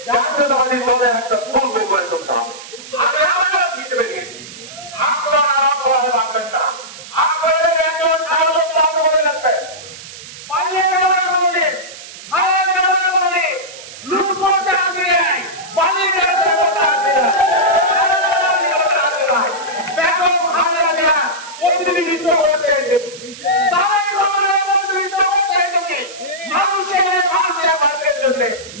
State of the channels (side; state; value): right; noise; hiss, 15 dB below the sound